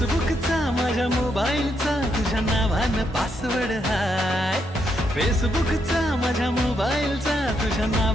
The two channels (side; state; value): both; normal; correlation 0.78